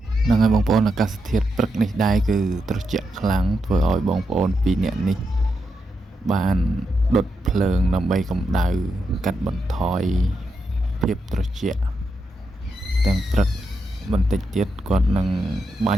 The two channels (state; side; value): normal; both; correlation 0.84